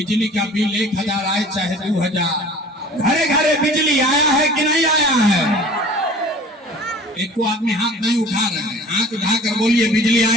का बिल 1000 आए चाहे 2000, घरे घरे बिजली आया है कि नहीं आया है? एक को आदमी हाथ नहीं उठा रहे हैं, हाथ उठाकर बोलिए बिजली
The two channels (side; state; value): both; normal; correlation 0.45